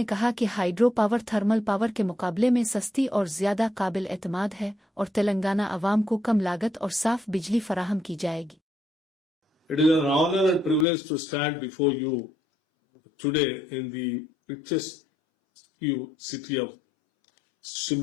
कहा कि हाइड्रो पावर थर्मल पावर के मुकाबले में सस्ती और ज़्यादा काबिल एतमाद है और तेलंगाना अवाम को कम लागत और साफ बिजली फराहम की जाएगी। It is an honor and privilege to stand before you today in the richest city of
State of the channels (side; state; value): right; drops out; at 10.9 s